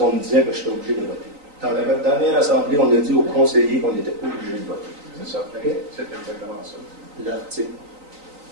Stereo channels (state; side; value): late; left; 3.9 ms